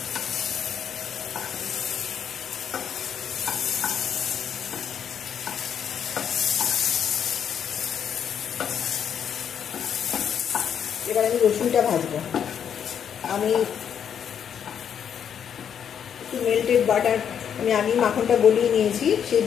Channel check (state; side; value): quieter; right; 8.3 dB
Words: এবার আমি রসুনটা ভাজবো। আমি একটু মেল্টেড বাটার, আমি মাখনটা গলিয়ে নিয়েছি, সেই